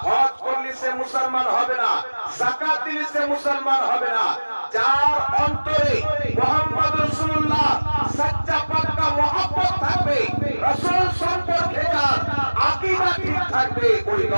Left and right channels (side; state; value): both; inverted; correlation -1.00